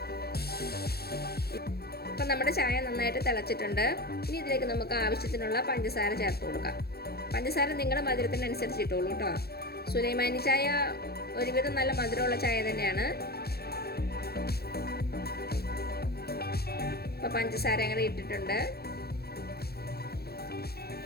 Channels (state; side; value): late; right; 0.46 ms